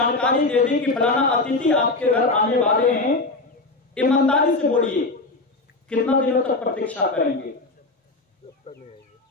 दे दी कि फलाना अतिथि आपके घर आने वाले हैं, ईमानदारी से बोलिए कितना दिनों तक प्रतीक्षा करेंगे?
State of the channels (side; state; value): right; quieter; 3.3 dB